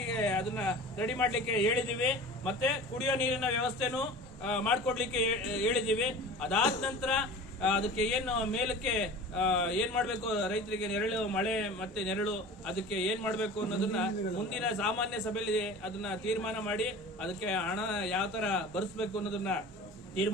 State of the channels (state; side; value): normal; both; correlation 0.37